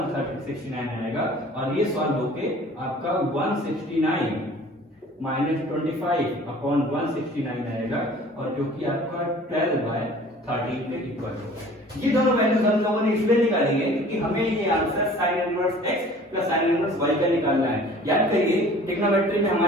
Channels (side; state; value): both; normal; correlation 0.48